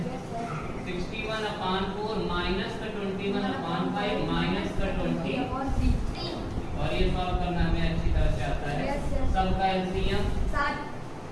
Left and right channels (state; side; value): identical; both; correlation 1.00